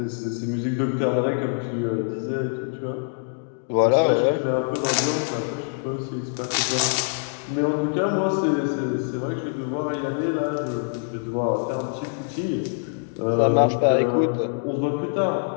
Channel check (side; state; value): right; silent; 62 dB below the other